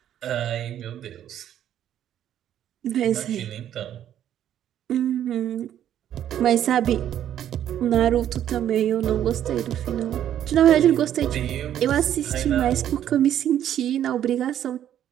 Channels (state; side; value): quieter; left; 10.7 dB